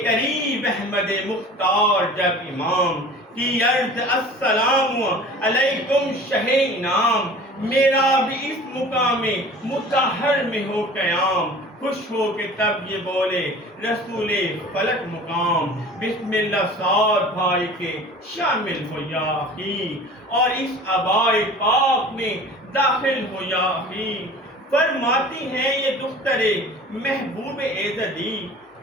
قریب احمد مختار جب امام کی عرض السلام علیکم شہ انعام، میرا بھی اس مقام مطہر میں ہو قیام، خوش ہو کے تب یہ بولے رسول فلک مقام، بسم اللہ سعد بھائی کے شامل ہو یا اخی، اور اس عبائے پاک میں داخل ہو یا اخی، فرماتی ہیں یہ دختر محبوب ایزدی،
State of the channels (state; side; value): normal; both; correlation 0.42